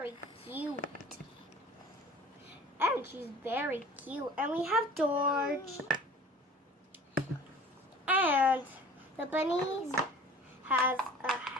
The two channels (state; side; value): normal; both; correlation 0.45